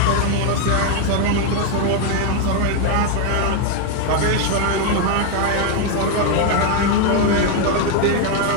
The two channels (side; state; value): both; different; correlation 0.01